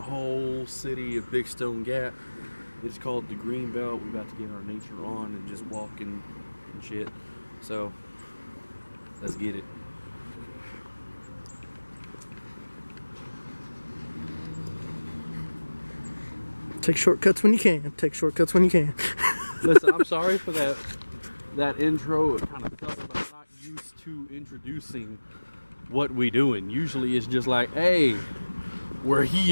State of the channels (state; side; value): inverted; both; correlation -1.00